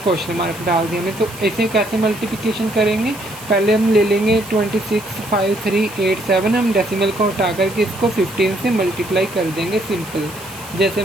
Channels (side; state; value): right; noise; hiss, 17 dB below the sound